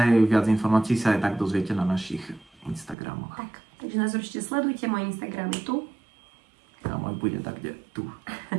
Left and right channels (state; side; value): drops out; left; at 3.0 s